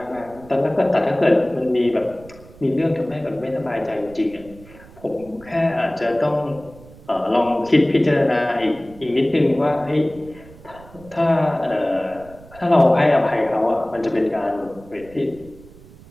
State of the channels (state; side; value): noise; right; rumble, 21 dB below the sound